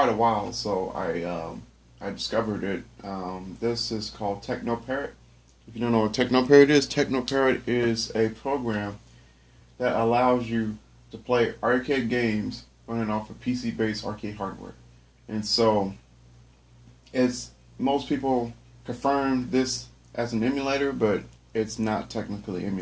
a while. So I discovered it. This is called TechnoParrot. If you don't know what TechnoParrot is a program that allows you to play arcade games running off of PC-based arcade hardware. And so it's most people confirm this as an emulator, but it's not technically an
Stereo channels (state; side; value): identical; both; correlation 1.00